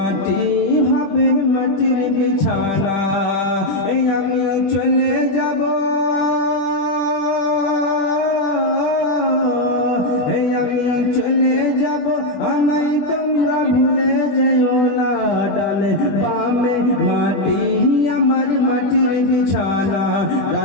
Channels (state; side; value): late; right; 20 ms